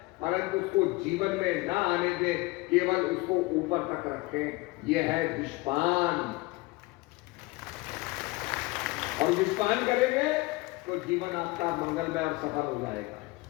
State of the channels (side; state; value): right; quieter; 22.5 dB